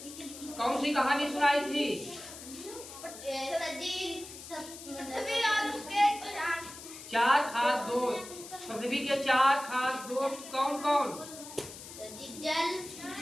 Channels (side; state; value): left; noise; hiss, 13 dB below the sound